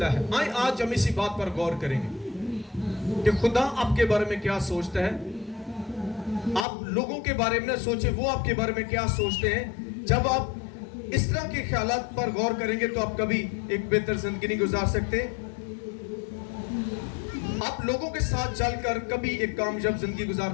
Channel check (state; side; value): drops out; right; at 6.7 s